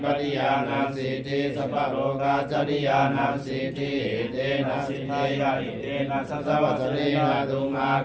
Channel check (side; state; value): both; identical; correlation 1.00